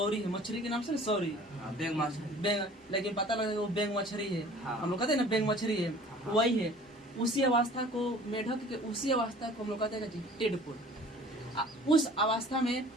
है मछली के नाम से, सौरी बेंग मछली, लेकिन पता लगा वो बेंग मछली है। हम लोग कहते हैं ना बेंग मछली है, वही है। उसी अवस्था को मेढक के, उसी अवस्था को हम लोग कहते हैं टेडपोड। उस अवस्था में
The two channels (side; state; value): both; normal; correlation 0.48